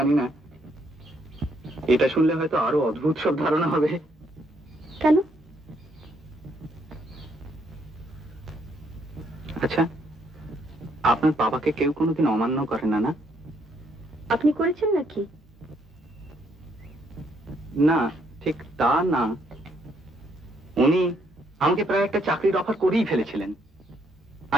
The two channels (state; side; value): normal; both; correlation 0.71